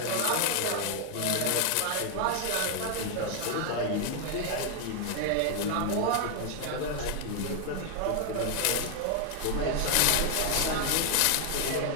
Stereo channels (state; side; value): different; both; correlation 0.00